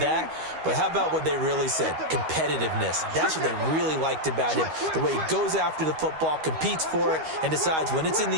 But how about what they really said? Competitiveness. That's what they really liked about him. The way he goes after the football, competes for it, and decides when it's in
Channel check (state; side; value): late; left; 13 ms